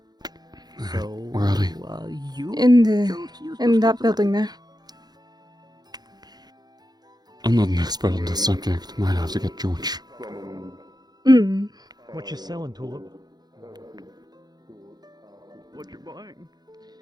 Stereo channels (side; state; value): left; late; 0.19 ms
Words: So Where are they? You In that building there. I'm not an expert on this subject. Might have to get George. Mm. What you selling, Tulip? What you buying?